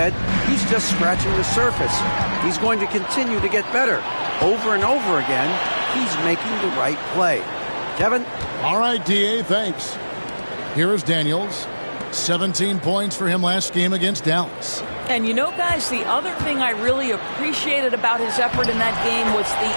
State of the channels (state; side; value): inverted; both; correlation -1.00